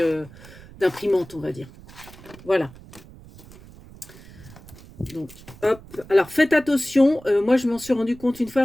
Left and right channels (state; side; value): noise; right; rumble, 20 dB below the sound